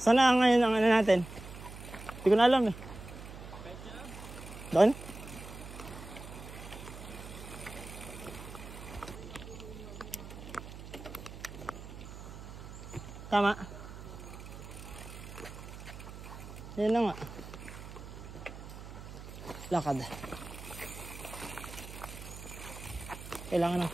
Sana ngayon ang ano natin? Hindi ko na alam eh. Doon? Tama. Yan na nga. Lakad. Kailangan ng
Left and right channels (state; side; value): noise; right; hum, 12 dB below the sound